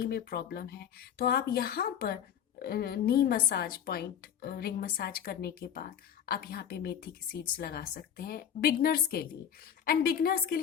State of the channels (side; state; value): right; quieter; 9.0 dB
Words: में प्रॉब्लम है, तो आप यहाँ पर नी मसाज पॉइंट, रिंग मसाज करने के बाद आप यहाँ पे मेथी की सीड्स लगा सकते हैं बिगनर्स के लिए। एंड बिगनर्स के